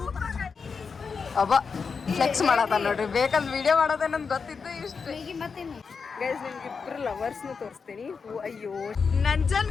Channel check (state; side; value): quieter; right; 5.4 dB